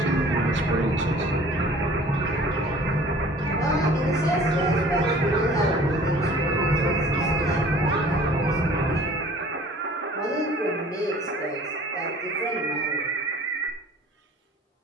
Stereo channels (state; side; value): normal; both; correlation 0.49